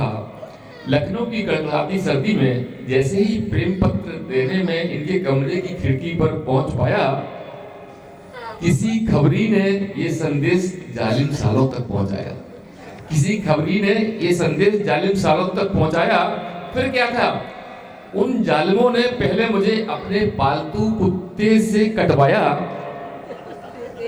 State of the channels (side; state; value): both; identical; correlation 1.00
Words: लखनऊ की कड़कड़ाती सर्दी में जैसे ही प्रेम पत्र देने में इनके कमरे की खिड़की पर पहुंच पाया, किसी खबरी ने ये संदेश जालिम सालों तक पहुंचाया। किसी खबरी ने ये संदेश जालिम सालों तक पहुंचाया। फिर क्या था, उन जालिमों ने पहले मुझे अपने पालतू कुत्ते से कटवाया,